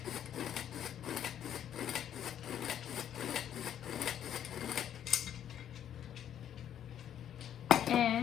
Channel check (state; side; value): quieter; right; 10.1 dB